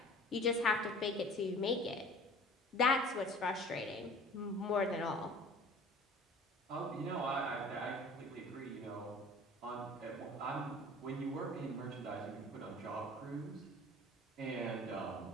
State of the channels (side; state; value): both; normal; correlation 0.45